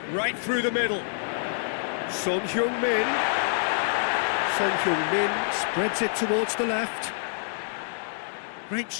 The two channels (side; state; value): right; silent; 60 dB below the other